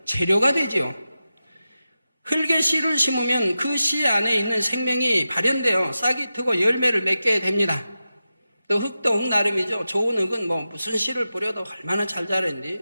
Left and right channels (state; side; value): inverted; both; correlation -0.92